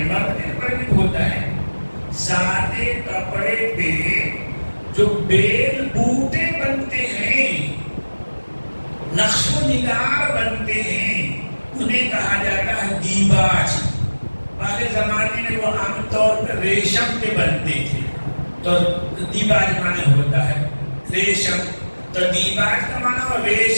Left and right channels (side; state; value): both; inverted; correlation -1.00